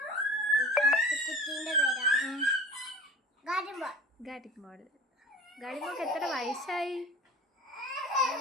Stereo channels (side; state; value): both; normal; correlation 0.40